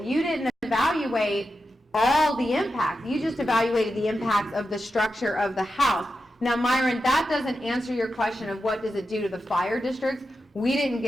you didn't evaluate all the impacts. You just evaluated the impacts of the structure of the house. Now, Myron, that doesn't answer your question of what does it do to the fire districts. We didn't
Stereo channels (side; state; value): both; normal; correlation 0.90